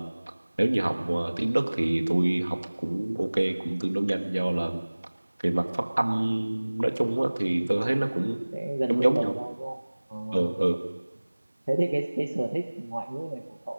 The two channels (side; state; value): both; inverted; correlation -1.00